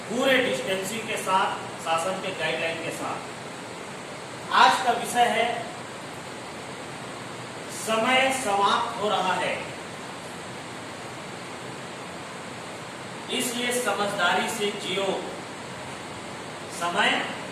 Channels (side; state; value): both; identical; correlation 1.00